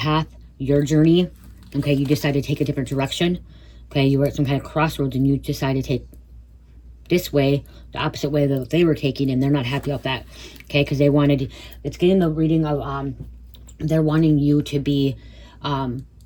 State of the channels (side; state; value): both; identical; correlation 1.00